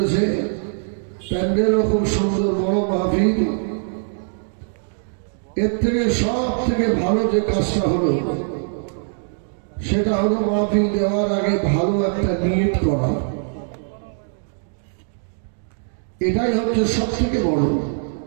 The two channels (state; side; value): silent; left; digital silence